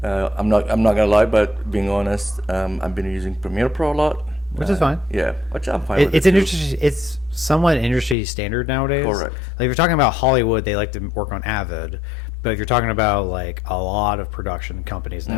not gonna lie, but being honest, I've been using Premiere Pro a lot. Which is fine. Yeah, which I'm fine with. It's somewhat industry standard nowadays. Correct. Like, if you're talking about Hollywood, they like to work on Avid, but if you're talking about like a lot of production companies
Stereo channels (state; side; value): drops out; right; at 8.2 s